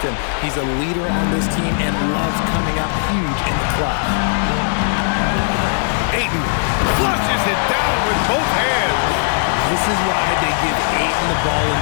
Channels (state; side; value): silent; right; 64 dB below the other